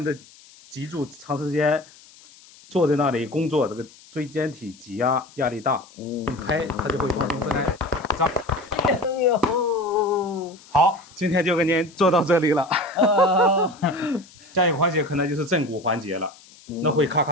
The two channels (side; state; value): left; noise; hiss, 24 dB below the sound